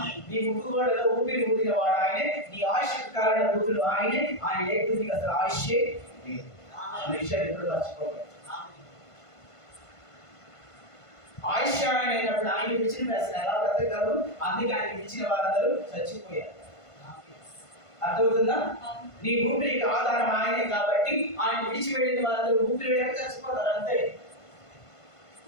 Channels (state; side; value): late; right; 1.5 ms